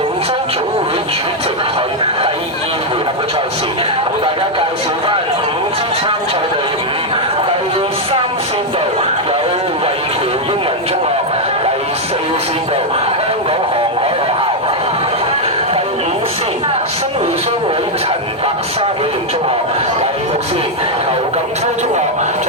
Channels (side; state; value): both; normal; correlation 0.01